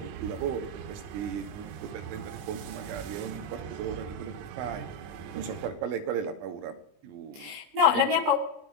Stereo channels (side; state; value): left; late; 20 ms